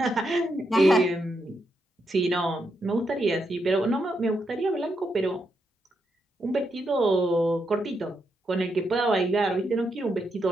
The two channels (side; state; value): both; normal; correlation 0.82